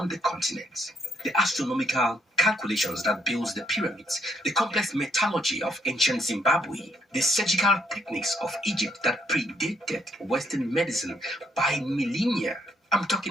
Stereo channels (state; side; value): normal; both; correlation 0.72